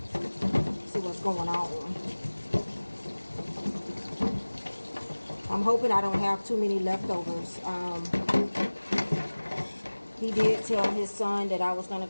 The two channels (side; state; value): both; inverted; correlation -1.00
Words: See what's going on. I'm hoping I don't have too many leftovers. He did tell his son that I was going